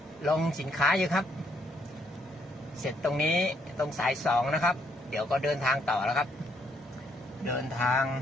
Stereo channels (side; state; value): both; normal; correlation 0.72